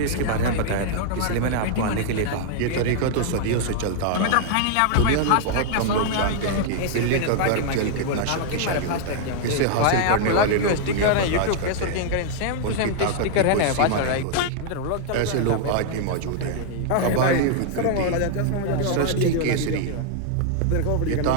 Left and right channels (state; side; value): different; both; correlation -0.01